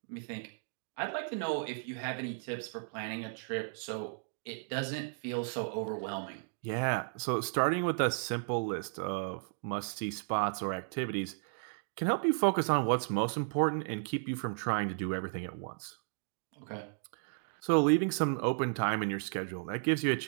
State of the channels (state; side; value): silent; left; digital silence